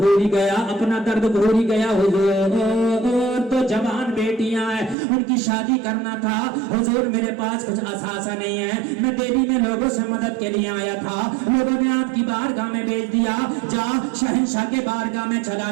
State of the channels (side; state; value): left; drops out; at 5.0 s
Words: ہی گیا، اپنا درد بھول ہی گیا۔ حضور تو جوان بیٹیاں ہیں، ان کی شادی کرنا تھا، حضور میرے پاس کچھ اثاثہ نہیں ہے، میں دہلی میں لوگوں سے مدد کے لیے آیا تھا، لوگوں نے آپ کی بارگاہ میں بھیج دیا، جا شہنشاہ کے بارگاہ میں چلا